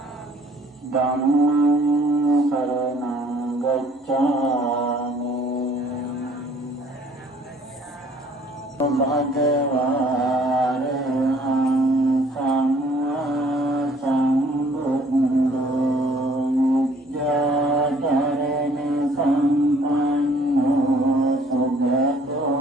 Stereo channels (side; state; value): both; normal; correlation 0.58